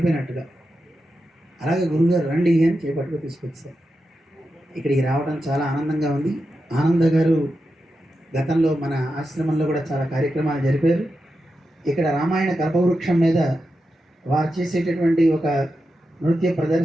అలాగే గురువుగారు రండి అని చేపట్టుకు తీసుకొచ్చారు. ఇక్కడికి రావడం చాలా ఆనందంగా ఉంది. ఆనంద గారు గతంలో మన ఆశ్రమంలో కూడా చాలా కార్యక్రమాలు జరిపారు. ఇక్కడ రామాయణ కల్పవృక్షం మీద వారు చేసేటటువంటి ఒక నృత్య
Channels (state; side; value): normal; both; correlation 0.89